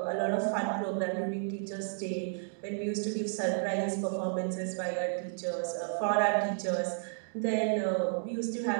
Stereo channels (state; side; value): silent; left; digital silence